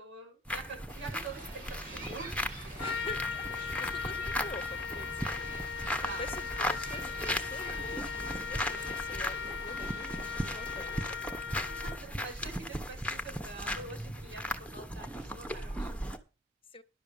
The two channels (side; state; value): both; normal; correlation 0.50